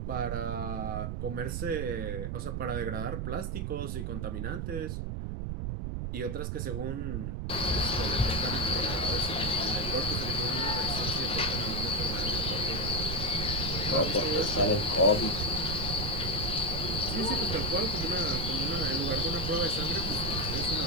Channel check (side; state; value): right; noise; rumble, 2 dB below the sound